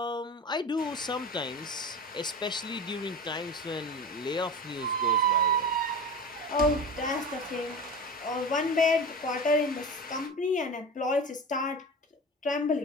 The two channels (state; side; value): normal; both; correlation 0.30